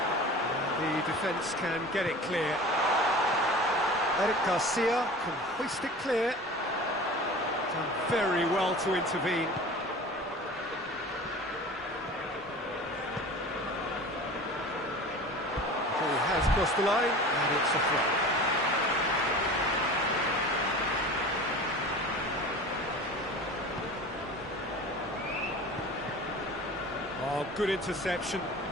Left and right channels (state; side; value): normal; both; correlation 0.38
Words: And the defence can get it clear. Eric Garcia can hoist it clear. Done very well to intervene. Ball has crossed the line, and it's a throw. Oh, good interception.